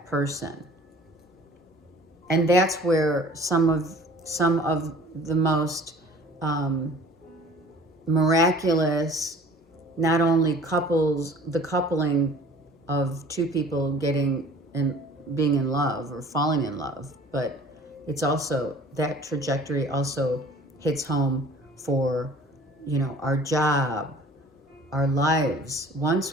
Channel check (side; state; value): both; normal; correlation 0.48